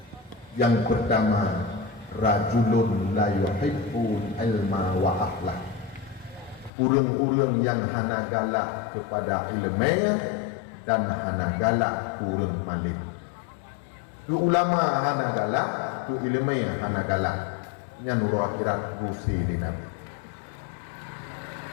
yang pertama rajulun la yuhibbu ilma wa akhlak. Urang-urang yang hana galak kepada ilmu dan hana galak urang malim. Tu ulama hana galak, tu ilmu hana galak. Yang nuru akhirat gusi di Nabi.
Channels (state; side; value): drops out; right; at 6.7 s